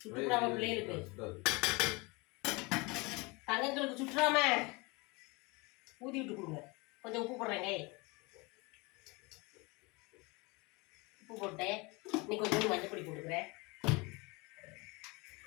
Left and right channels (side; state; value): right; quieter; 26.4 dB